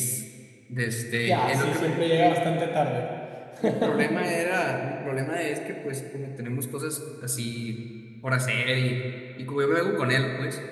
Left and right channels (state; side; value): identical; both; correlation 1.00